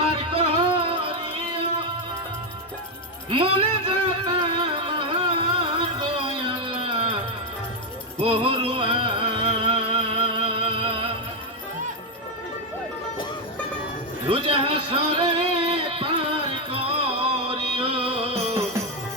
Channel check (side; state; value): both; normal; correlation 0.04